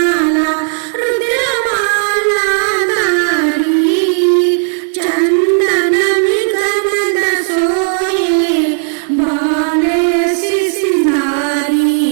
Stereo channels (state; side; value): silent; left; digital silence